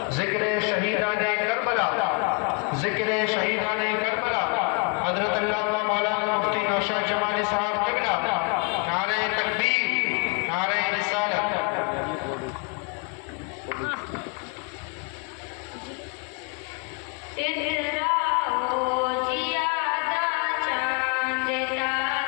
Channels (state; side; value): quieter; right; 35.9 dB